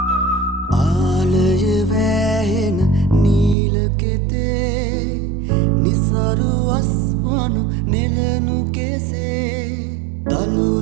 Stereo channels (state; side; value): drops out; left; at 3.6 s